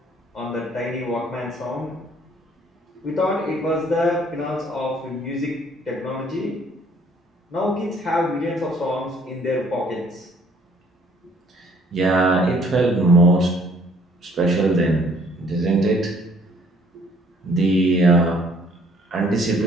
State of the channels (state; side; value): normal; both; correlation 0.60